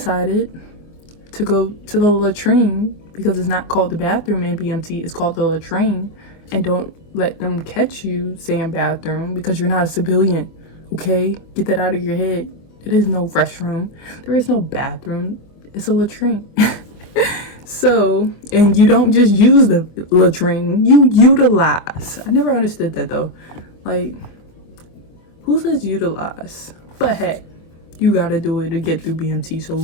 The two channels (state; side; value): late; right; 24 ms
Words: to go to the latrine, because it's not called the bathroom in BMT, it's called the latrine. And don't let them catch you saying bathroom because you're not a civilian, okay? Get that out of your head. There is no restroom. There is no bathroom. It's a latrine. So, and you don't just use the latrine, you utilize. I never understood that though. Like, who says utilize? But hey, you gotta do it to get through BMT,